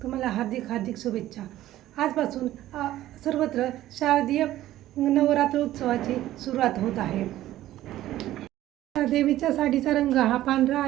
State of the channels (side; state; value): left; quieter; 14.2 dB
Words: तुम्हाला हार्दिक हार्दिक शुभेच्छा। आजपासून सर्वत्र शारदीय नवरात्र उत्सवाची सुरुवात होत आहे। देवीच्या साडीचा रंग हा पांढरा